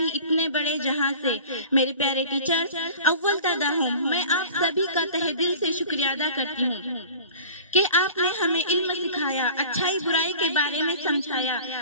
इतने बड़े जहाँ से। मेरे प्यारे टीचर्स, अव्वल तदा हूँ, मैं आप सभी का तहे दिल से शुक्रिया अदा करती हूँ कि आपने हमें इल्म सिखाया, अच्छाई बुराई के बारे में समझाया।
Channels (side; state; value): both; inverted; correlation -0.41